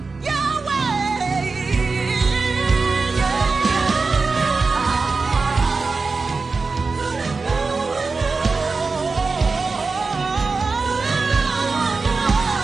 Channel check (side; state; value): left; quieter; 4.2 dB